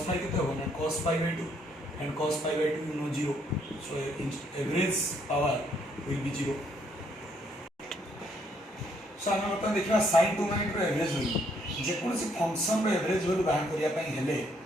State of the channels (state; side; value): normal; both; correlation 0.70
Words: phi कितना होगा ना cos pi by 2 and cos pi by 2 you know 0 so average power will be 0 so हम बता देखिबा sin 2 ओमेगा रो एवरेज वैल्यू जे कोनसी फंक्शन रो एवरेज वैल्यू बाहर करिया पई हेले